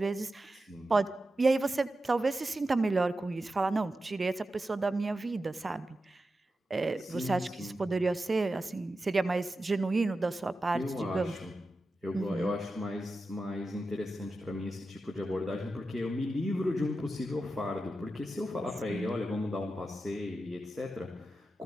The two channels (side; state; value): both; normal; correlation 0.91